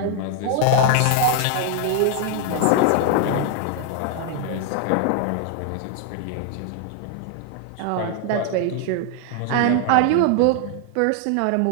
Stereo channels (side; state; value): both; different; correlation 0.00